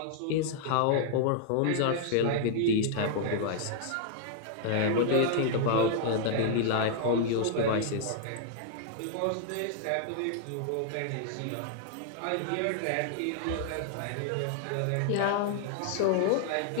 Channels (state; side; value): different; both; correlation 0.00